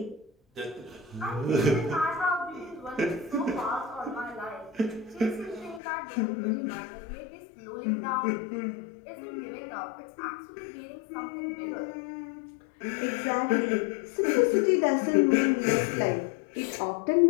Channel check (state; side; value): drops out; right; at 5.8 s